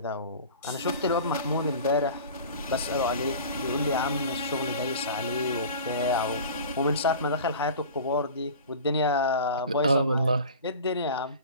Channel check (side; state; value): both; inverted; correlation -0.38